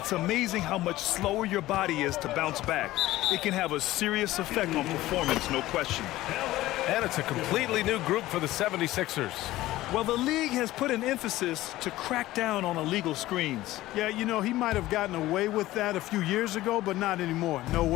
amazing how much slower your body is to bounce back. It can have a serious effect on performance, no question. And it's a completely new group for the 76ers. Well, the league has put an emphasis to crack down on illegal screens. Yeah, you know, he might have gotten away with that a few years ago, but not anymore. No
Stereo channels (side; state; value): right; quieter; 16.4 dB